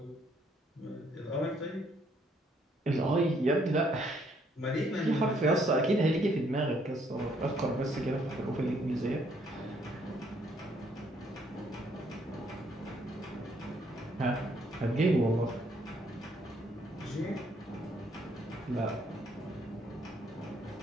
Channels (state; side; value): normal; both; correlation 0.68